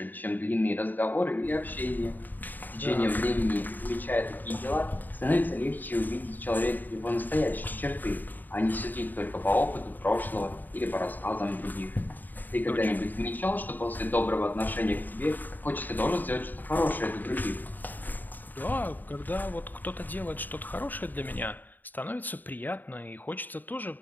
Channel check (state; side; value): late; right; 0.088 ms